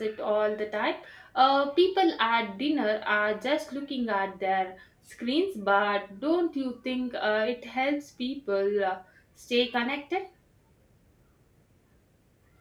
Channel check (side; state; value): both; identical; correlation 1.00